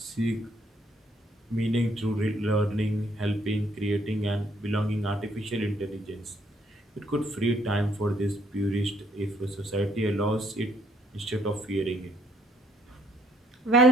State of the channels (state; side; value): normal; both; correlation 0.67